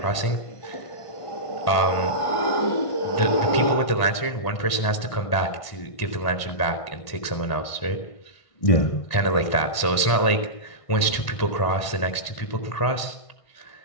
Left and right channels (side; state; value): right; late; 1.5 ms